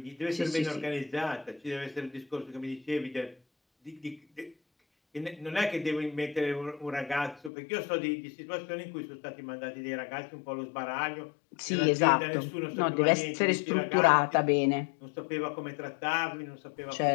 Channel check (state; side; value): drops out; right; at 7.5 s